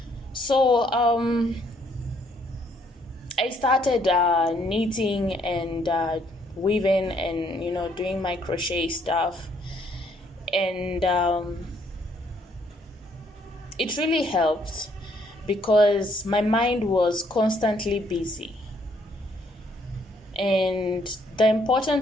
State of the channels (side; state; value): both; normal; correlation 0.68